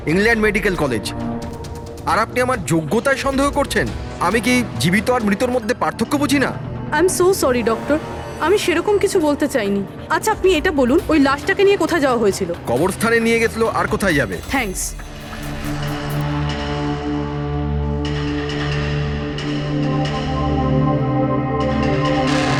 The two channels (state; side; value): identical; both; correlation 1.00